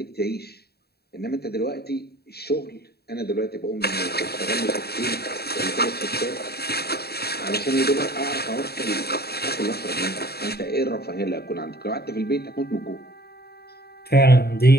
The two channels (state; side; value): late; right; 0.46 ms